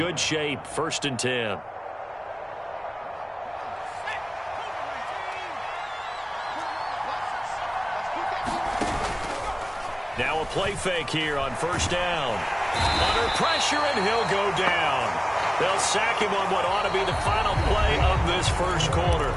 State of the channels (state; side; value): identical; both; correlation 1.00